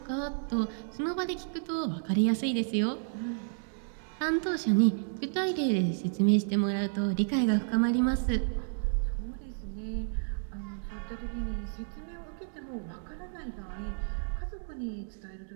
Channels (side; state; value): left; silent; digital silence